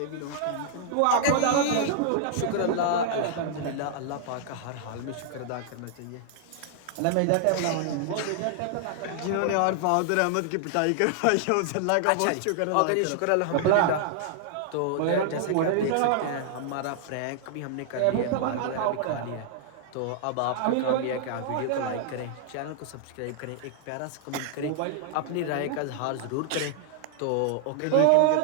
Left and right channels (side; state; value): both; different; correlation -0.01